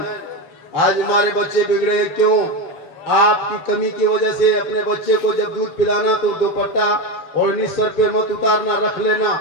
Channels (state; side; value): late; right; 7.3 ms